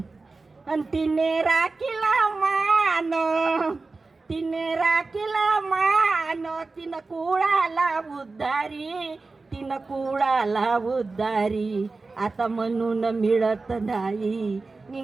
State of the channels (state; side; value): quieter; left; 3.8 dB